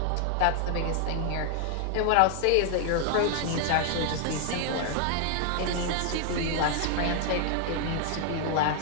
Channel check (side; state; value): both; different; correlation 0.00